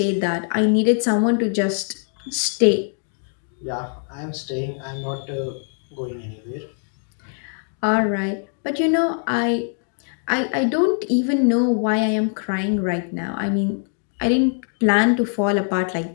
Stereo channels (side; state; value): right; silent; 59 dB below the other